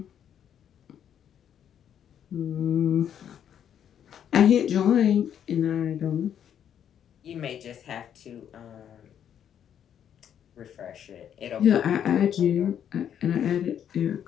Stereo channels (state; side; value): quieter; right; 9.2 dB